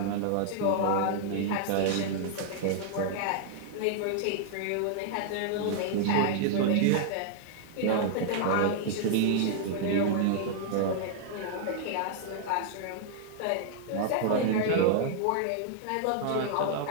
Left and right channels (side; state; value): both; different; correlation -0.01